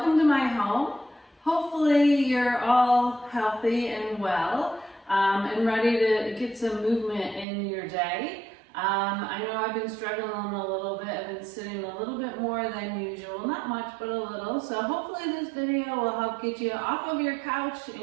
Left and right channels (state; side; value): drops out; left; at 7.5 s